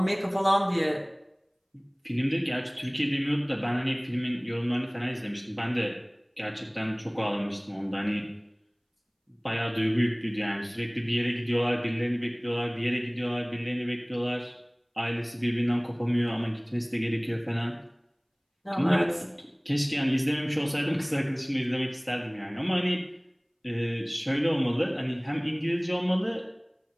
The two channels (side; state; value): both; identical; correlation 1.00